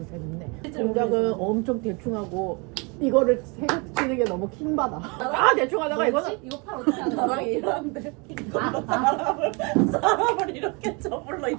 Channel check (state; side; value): quieter; left; 30.5 dB